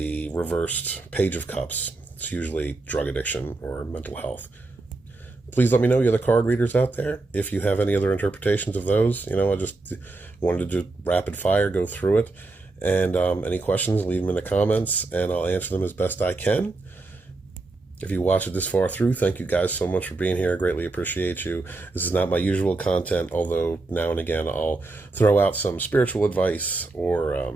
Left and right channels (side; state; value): left; quieter; 3.3 dB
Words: reversed Page of Cups, it's usually drug addiction or mental health. Please let me know, you other card readers out there, if you have any other interpretations of those. You know, I just wanted to do rapid fire, go through it. And any questions, leave them in the comments, and I'll answer them as best I can. If you watched it this far through, thank you guys so much for being here. I greatly appreciate you. This is not my usual content, although now and again I'll throw out some spiritual advice or,